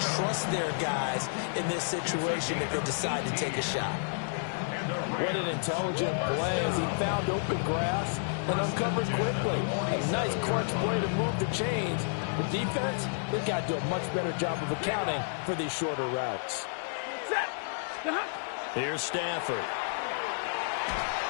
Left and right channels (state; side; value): silent; right; digital silence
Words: trust their guys in this situation if they decide to take a shot. What an intelligent play as he found open grass and uncovered quickly. A nice crunch play to move the chains. The defense, they've got to do a much better job of accounting for these shorter routes. Here's Stafford.